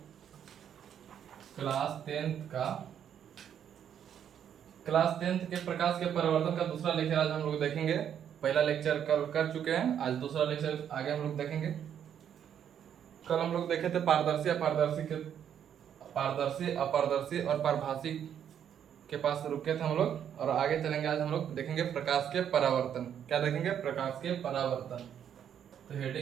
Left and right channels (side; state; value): left; quieter; 9.1 dB